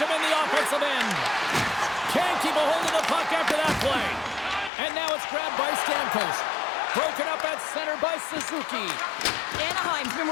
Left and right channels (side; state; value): right; drops out; at 4.7 s